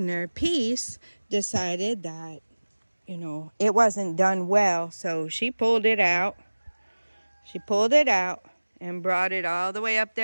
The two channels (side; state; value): both; inverted; correlation -1.00